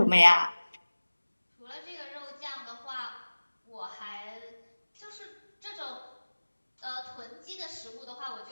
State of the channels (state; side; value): inverted; both; correlation -1.00